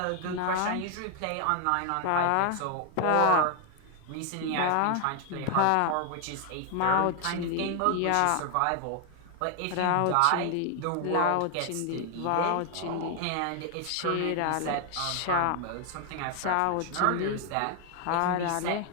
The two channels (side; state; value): both; different; correlation 0.00